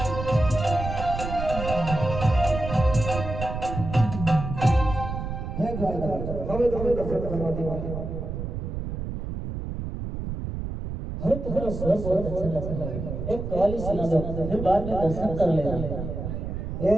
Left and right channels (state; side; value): noise; right; rumble, 5 dB below the sound